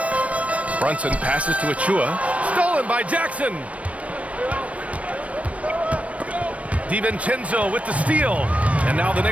Brunson passes to Achua. Stolen by Jackson. DiVincenzo with the steal. And now the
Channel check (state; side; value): late; left; 0.065 ms